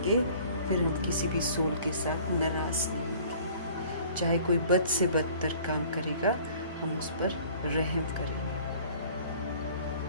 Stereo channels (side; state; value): both; inverted; correlation -0.51